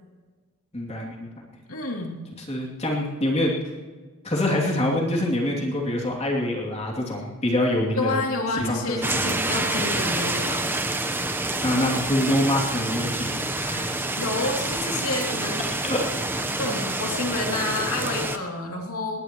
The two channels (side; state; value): both; normal; correlation 0.39